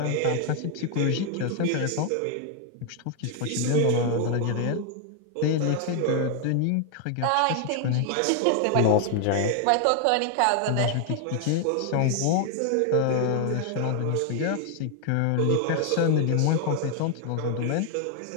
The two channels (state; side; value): different; both; correlation 0.00